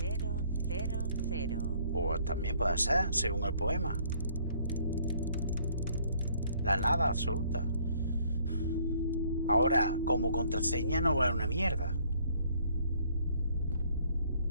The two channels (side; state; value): both; inverted; correlation -0.63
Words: Pues también puede ser, según el poema. La nada absoluta. Ahora, como contraseña no vale una mierda.